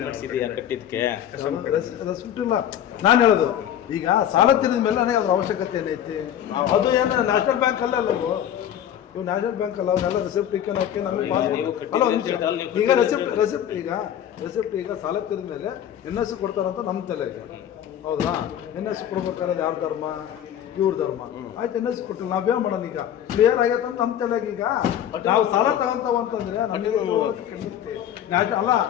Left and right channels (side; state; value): right; quieter; 10.3 dB